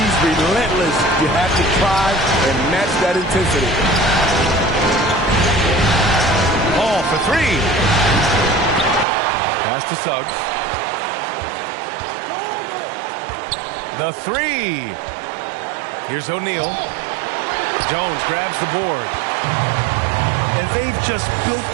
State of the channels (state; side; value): drops out; left; at 9.1 s